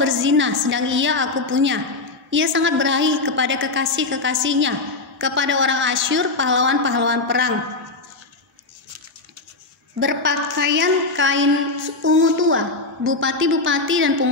sedang ia aku punya. Ia sangat berahi kepada kekasih-kekasihnya, kepada orang Asyur, pahlawan-pahlawan perang. Berpakaian kain ungu tua, bupati-bupati dan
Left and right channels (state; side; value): quieter; right; 3.5 dB